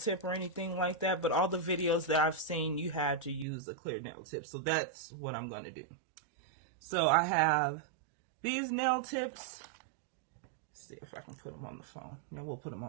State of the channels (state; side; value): drops out; left; at 3.5 s